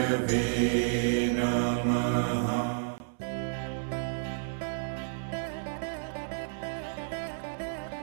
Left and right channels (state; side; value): silent; left; 57 dB below the other